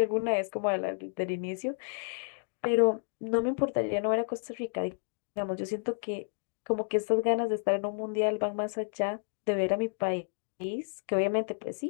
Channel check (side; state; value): right; silent; digital silence